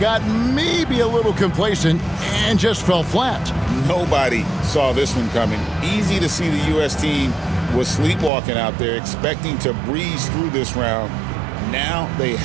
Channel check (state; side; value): drops out; left; at 8.3 s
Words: maybe a little complacent and just fell flat. Nobody saw this one coming. Easy to see the U.S. team was sleepwalking out there, expecting to breeze through this round. Now they